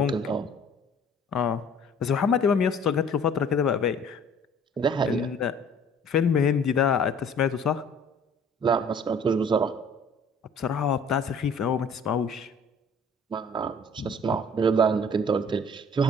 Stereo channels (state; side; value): normal; both; correlation 0.52